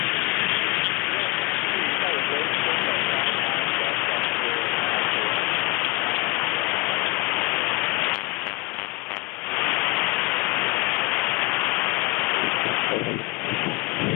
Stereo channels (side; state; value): right; quieter; 23.8 dB